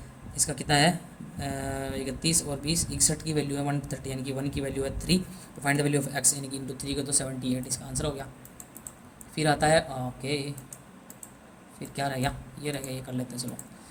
इसका कितना है 31 और 20, 61 की वैल्यू है 130 यानी कि 1 की वैल्यू है 3, तो find the value of x यानी कि इंटू 3 को तो 78, इसका आंसर हो गया। फिर आता है ओके, फिर क्या रह गया, ये रह गया, ये कर लेते हैं चलो।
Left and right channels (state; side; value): identical; both; correlation 1.00